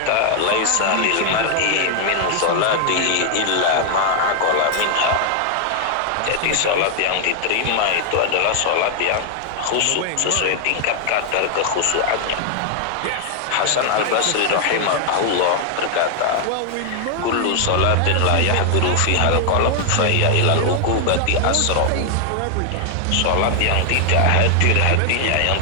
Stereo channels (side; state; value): both; different; correlation 0.00